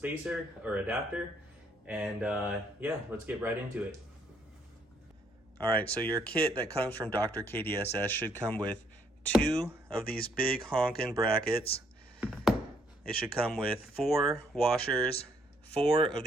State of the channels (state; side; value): normal; both; correlation 0.69